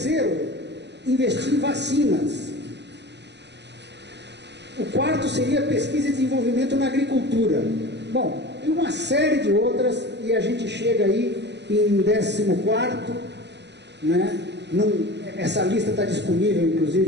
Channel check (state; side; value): late; left; 0.50 ms